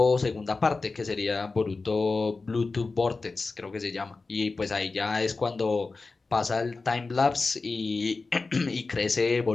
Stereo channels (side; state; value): right; quieter; 3.9 dB